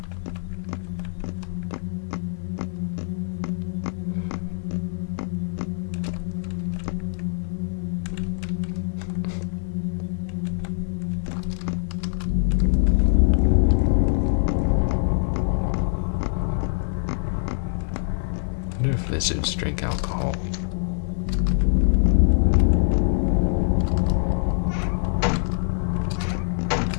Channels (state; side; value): silent; right; 62 dB below the other